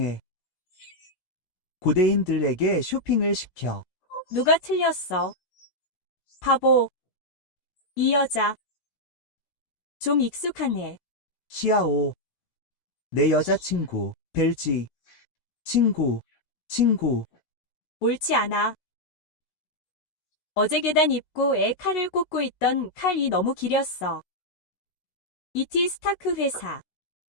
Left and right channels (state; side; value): late; right; 16 ms